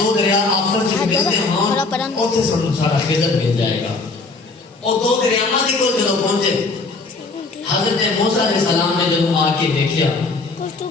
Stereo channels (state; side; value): quieter; right; 3.7 dB